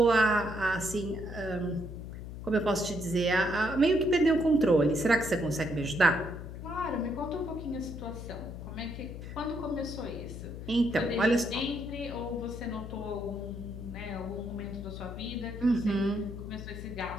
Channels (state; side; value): noise; left; hum, 9 dB below the sound